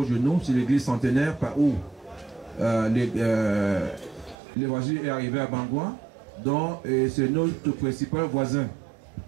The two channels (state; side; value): drops out; left; at 4.4 s